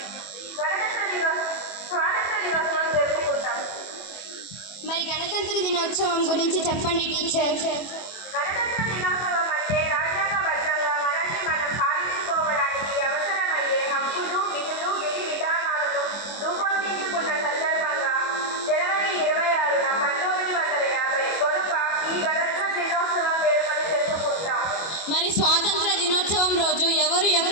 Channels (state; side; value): late; right; 24 ms